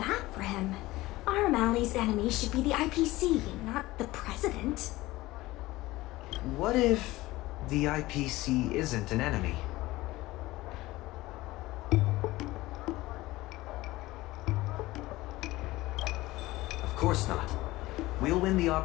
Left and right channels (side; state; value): right; quieter; 18.7 dB